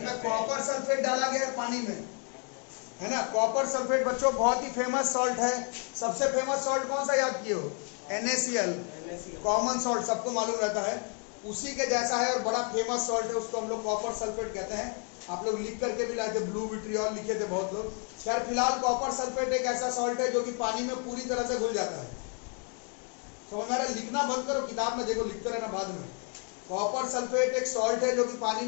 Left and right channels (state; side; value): quieter; right; 39.8 dB